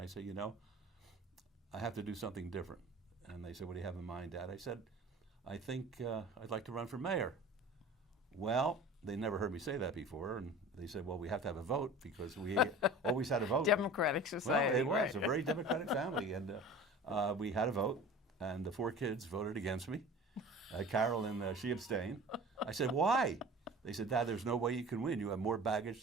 said, I have to do something different. And they said, what do you have in mind, Dad? I said, I think I'd like to run for mayor. Well, they never heard me say that before, and they said, well, we have to have a vote, because we always had a vote. Democratic society. Well, it was right. a very democratic family, and we had a vote, and the 4 kids voted against me. Carolyn, she abstained. I said, why? They said, Dad, there's no way you can win. You have more baggage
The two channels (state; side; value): normal; both; correlation 0.40